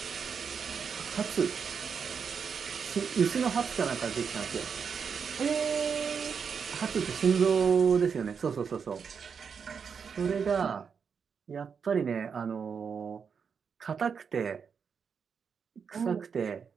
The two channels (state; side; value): quieter; left; 6.3 dB